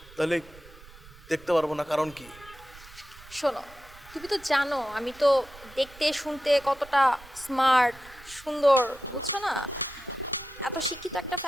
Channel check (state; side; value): noise; right; rumble, 21 dB below the sound